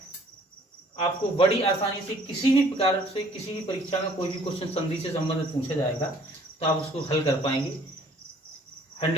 आपको बड़ी आसानी से किसी भी प्रकार से किसी भी परीक्षा में कोई भी क्वेश्चन संधि से संबंधित पूछा जाएगा तो आप उसको हल कर पाएंगे,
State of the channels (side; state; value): both; normal; correlation 0.57